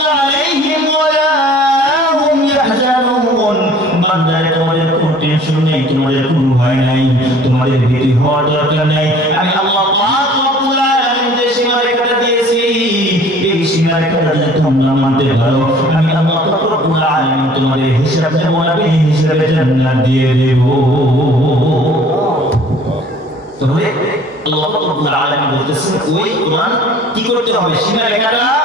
আলাইহিম ওয়ালা হুম ইয়াহজানুন। বান্দারে তোমাদের কোনো টেনশন নেই, তোমাদের কোনো ভয় নাই, তোমাদের ভীতি হওয়ার দরকার নেই। আমি আল্লাহ পাক রব্বুল আলামিন যে সীমারেখাটা দিয়েছি এই সীমারেখাটা যদি তোমরা মানতে পারো আমি আল্লাহ পাক রব্বুল আলামিন তোমাদের হিসাব নেব না, হিসাবে জান্নাত দিয়ে দেব। তাহলে আল্লাহ পাক রব্বুল আলামিন বলতেছেন ওই কোরআন কি করতে হবে, সীমারেখাটা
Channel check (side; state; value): both; normal; correlation 0.51